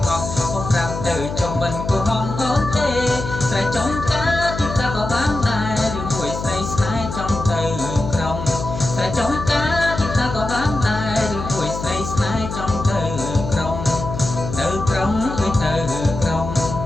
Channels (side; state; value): left; noise; hum, 7 dB below the sound